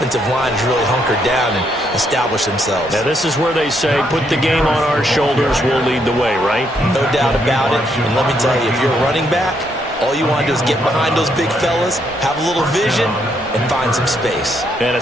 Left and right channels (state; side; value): normal; both; correlation 0.74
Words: line has really hunkered down and established themselves. Now, this is where they say, put the game on our shoulders, we'll lead the way, right? No doubt about it. And let me tell you, if you're a running back, all you want to do is get behind those big fellas, have a little vision, and find some space. And a